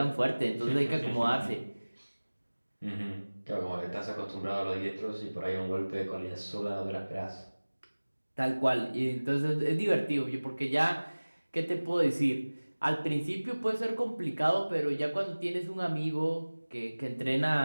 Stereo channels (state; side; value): inverted; both; correlation -1.00